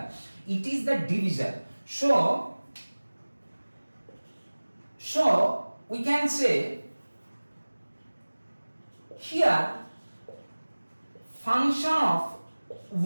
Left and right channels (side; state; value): both; inverted; correlation -1.00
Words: It is the divisor. So we can say here function of